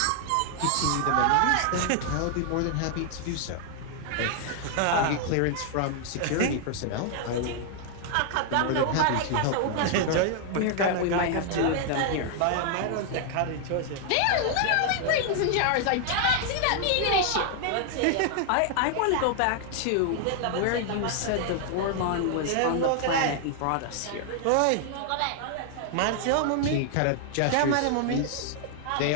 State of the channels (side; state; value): both; different; correlation 0.00